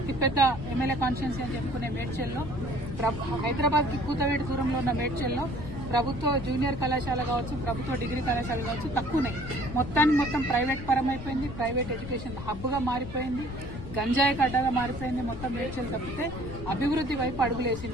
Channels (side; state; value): left; noise; rumble, 10 dB below the sound